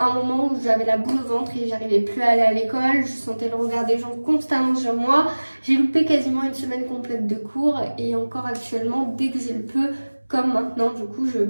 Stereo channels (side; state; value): both; inverted; correlation -1.00